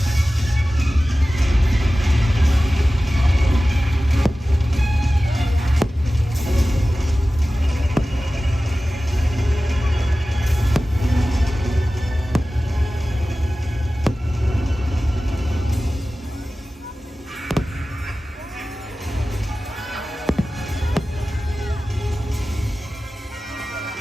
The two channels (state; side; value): normal; both; correlation 0.96